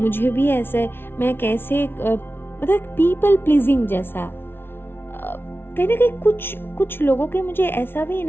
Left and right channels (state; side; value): late; right; 0.11 ms